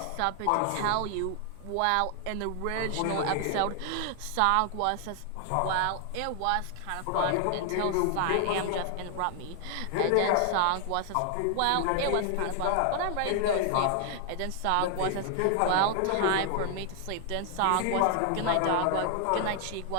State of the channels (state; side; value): different; both; correlation 0.00